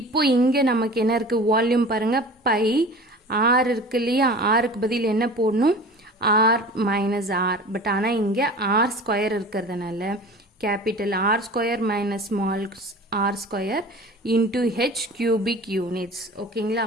இங்கே நமக்கு என்ன இருக்குது, வால்யூம் பாருங்கள் பை ஆர் இருக்கு இல்லையா, ஆருக்கு பதில் என்ன போடணும் ஆர் மைனஸ் ஆர். பட் ஆனால் இங்கே ஆர் ஸ்கொயர் இருக்கிறதுனால capital R square minus small r square into h cubic units. ஓகேங்களா.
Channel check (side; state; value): both; normal; correlation 0.39